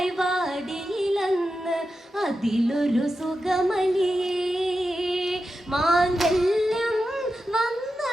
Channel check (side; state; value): both; normal; correlation 0.90